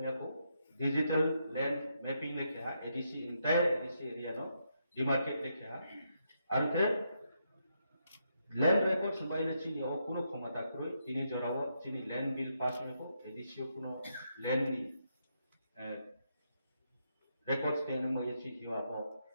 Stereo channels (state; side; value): inverted; both; correlation -0.80